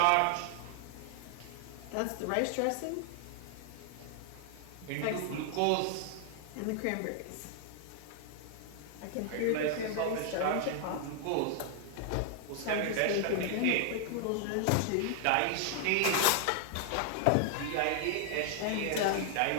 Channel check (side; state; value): both; different; correlation 0.00